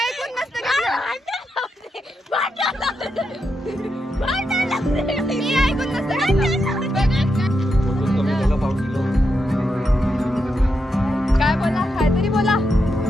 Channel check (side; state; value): both; normal; correlation 0.85